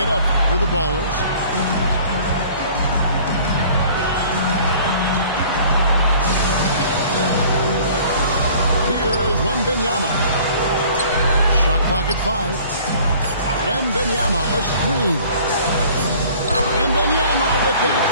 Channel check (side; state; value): both; inverted; correlation -0.50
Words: up for the Ballers. Here is Wembanyama. Shot clock at 5. Wembanyama, a screen. Wembanyama with that